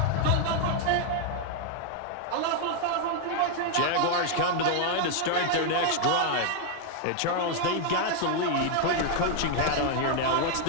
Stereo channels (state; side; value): different; both; correlation 0.00